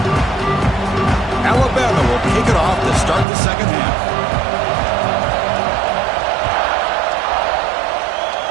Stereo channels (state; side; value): drops out; left; at 3.2 s